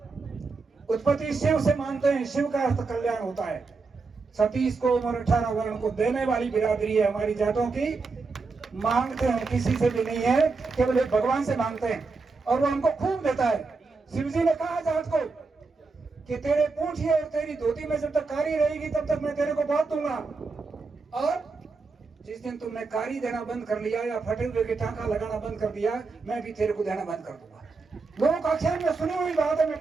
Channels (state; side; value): quieter; left; 4.2 dB